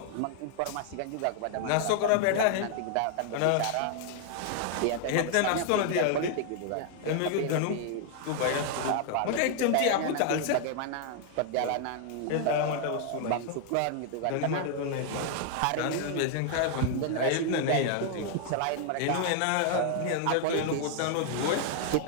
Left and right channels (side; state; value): both; different; correlation 0.00